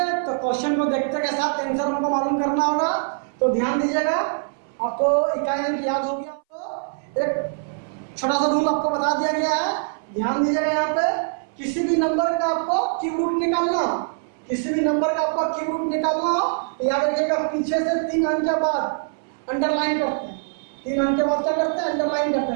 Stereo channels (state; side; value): silent; left; 60 dB below the other